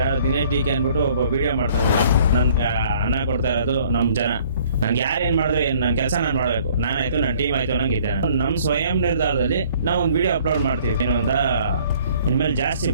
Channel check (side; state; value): both; inverted; correlation -0.57